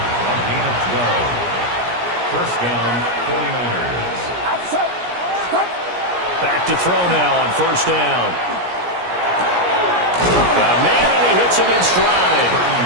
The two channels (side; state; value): left; late; 17 ms